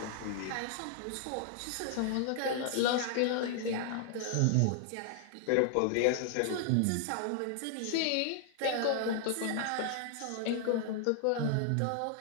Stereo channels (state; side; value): different; both; correlation 0.00